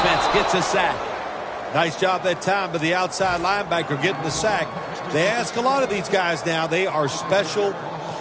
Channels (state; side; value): identical; both; correlation 1.00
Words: gets a sack. Nice job that time by the outside linebacker getting the sack. They ask a lot of these guys now. They are special